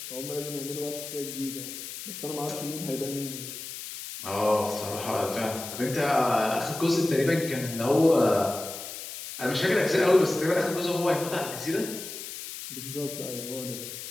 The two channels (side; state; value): left; noise; hiss, 9 dB below the sound